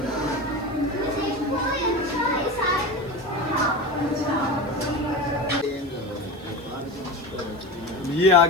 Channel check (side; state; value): right; noise; hiss, 29 dB below the sound